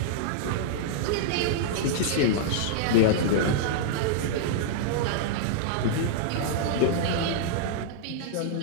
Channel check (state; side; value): different; both; correlation -0.02